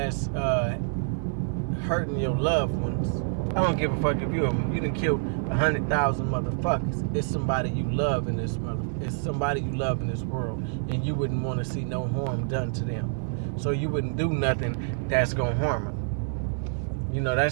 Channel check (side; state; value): left; silent; digital silence